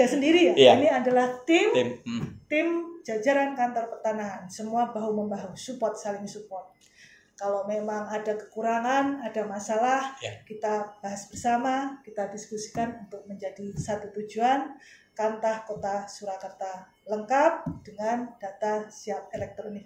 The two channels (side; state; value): both; identical; correlation 1.00